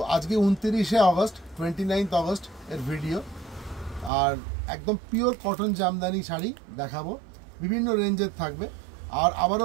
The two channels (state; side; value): drops out; left; at 4.1 s